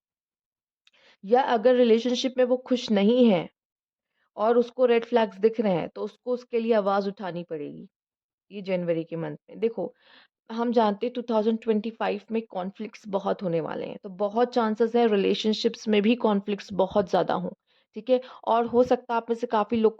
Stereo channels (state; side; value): identical; both; correlation 1.00